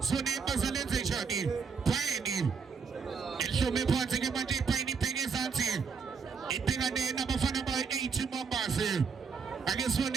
zone bazalenze njani phayini ehlome phansi ke manje iphayini ibheke ezansi ibhekane nabafana ba-80 Mambas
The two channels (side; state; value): left; quieter; 5.6 dB